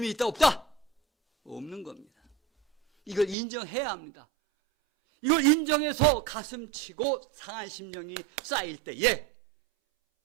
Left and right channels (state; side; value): drops out; left; at 3.4 s